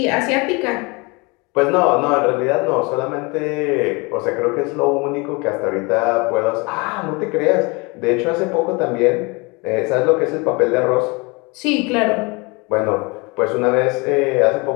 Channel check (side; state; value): right; quieter; 27.7 dB